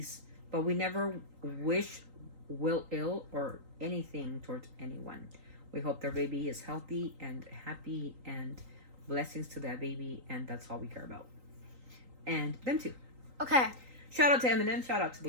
But we never wish will ill or anything towards anyone. We hope their baby is healthy and happy and blessings to that baby. And that's all we care about. And them too. Okay. Shout out to Eminem. Shout out to the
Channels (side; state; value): left; late; 3.9 ms